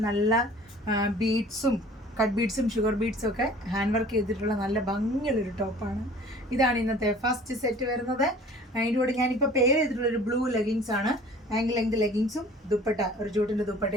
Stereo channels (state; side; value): normal; both; correlation 0.48